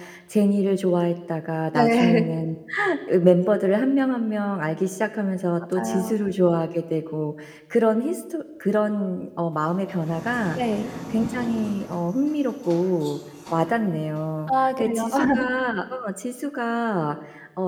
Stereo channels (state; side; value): identical; both; correlation 1.00